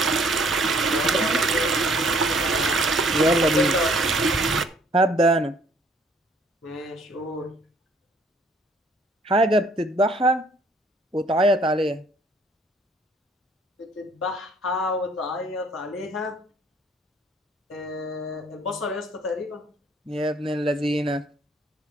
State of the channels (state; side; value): normal; both; correlation 0.61